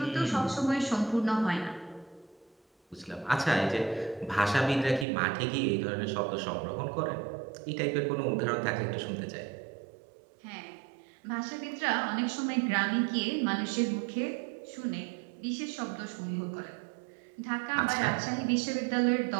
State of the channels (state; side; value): drops out; left; at 5.1 s